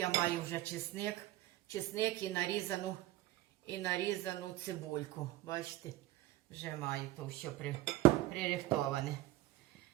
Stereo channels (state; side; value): quieter; left; 16.2 dB